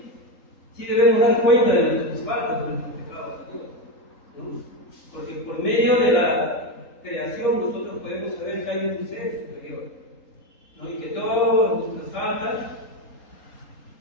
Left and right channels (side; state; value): right; late; 3.8 ms